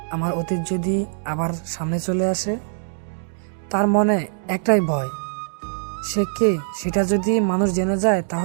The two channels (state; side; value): silent; left; digital silence